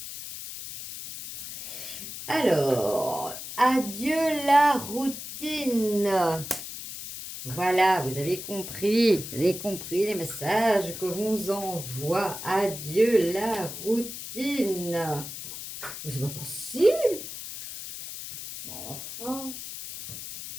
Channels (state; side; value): noise; left; hiss, 9 dB below the sound